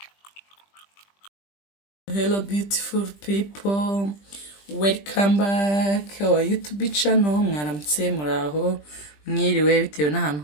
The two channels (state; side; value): late; right; 20 ms